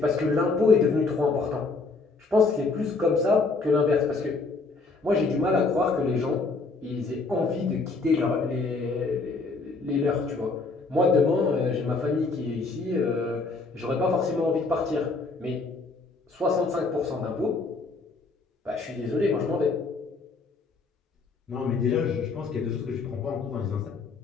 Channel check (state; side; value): quieter; right; 3.9 dB